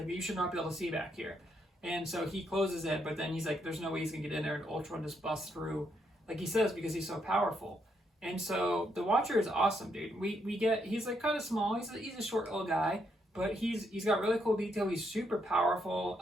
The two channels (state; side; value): normal; both; correlation 0.76